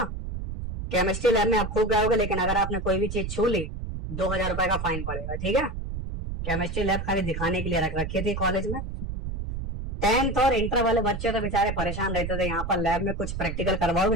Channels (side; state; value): right; noise; rumble, 6 dB below the sound